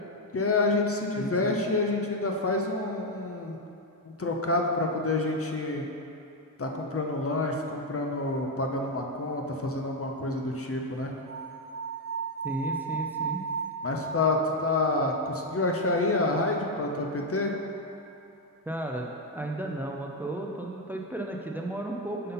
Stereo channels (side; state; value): both; normal; correlation 0.03